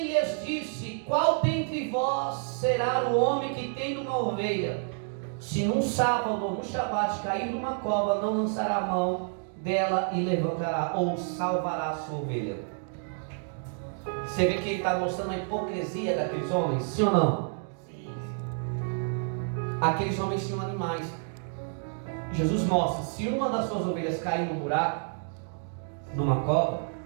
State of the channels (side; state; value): left; silent; 59 dB below the other